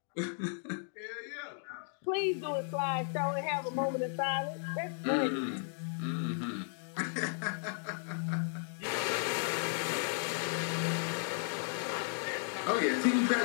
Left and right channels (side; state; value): right; silent; 54 dB below the other